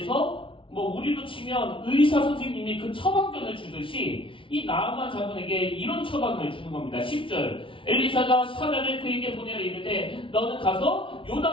뭐 우리로 치면 의사 선생님이 그 처방전을 주듯이 이 나아만 장군에게 이런 처방을 주는 겁니다. 10절 엘리사가 사자를 그에게 보내어 이르되 너는 가서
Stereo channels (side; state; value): right; late; 0.25 ms